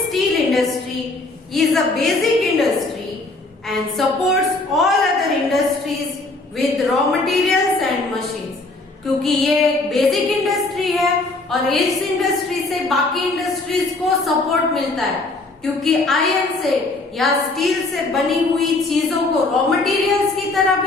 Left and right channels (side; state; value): right; quieter; 3.2 dB